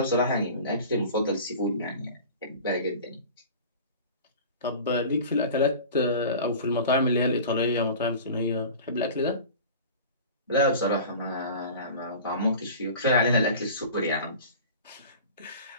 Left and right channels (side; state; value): both; inverted; correlation -0.37